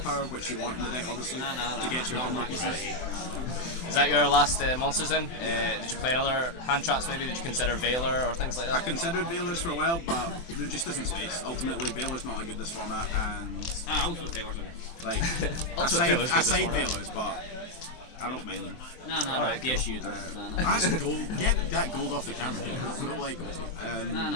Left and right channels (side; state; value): right; late; 24 ms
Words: which you want in the deck obviously, to get your combo pieces. Is that your last monsters then? Did you play another hand traps maybe? Did you consider Veiler or things like I that? considered Veilers for a while, but there just isn't space. Ultimately, Veiler's not a good this format, and Ultimate Veilers on it. like Ultimate Veiler's good I this side format. Veilers, but I don't mind them. No, Alright, yes cool. you do. No. That's gold. Get that gold off the camera. We don't like gold. No,